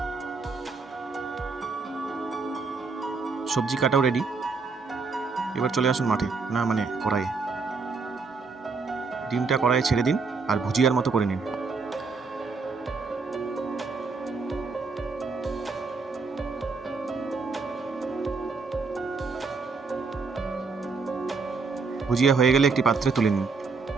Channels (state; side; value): quieter; left; 4.5 dB